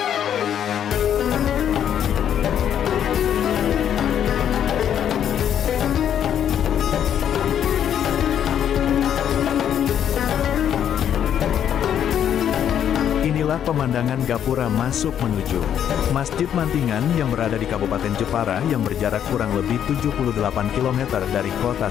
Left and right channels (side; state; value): right; quieter; 9.5 dB